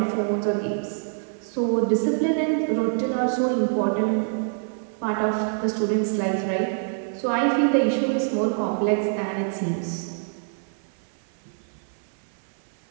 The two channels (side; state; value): left; silent; 61 dB below the other